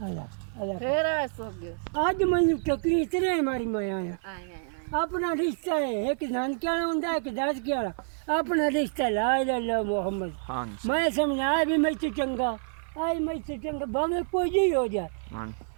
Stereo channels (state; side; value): silent; left; 59 dB below the other